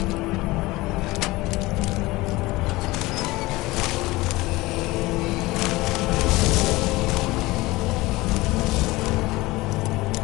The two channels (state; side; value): quieter; right; 20.4 dB